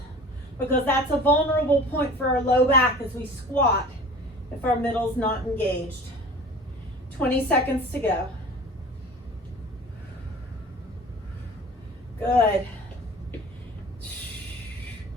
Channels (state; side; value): normal; both; correlation 0.41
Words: because that's a vulnerable point for our low back as we squat if our middle's not engaged. 20 seconds to go. Good.